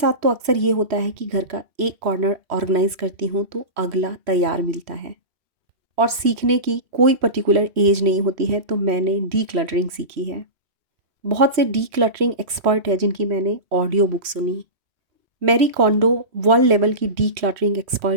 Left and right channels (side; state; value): left; late; 3.1 ms